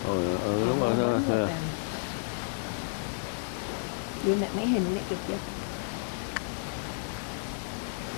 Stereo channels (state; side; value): silent; right; digital silence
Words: Đúng rồi. Đưa mẹ mấy hình này chụp chưa?